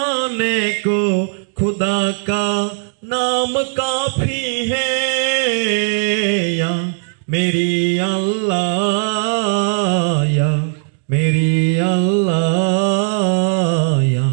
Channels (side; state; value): left; silent; digital silence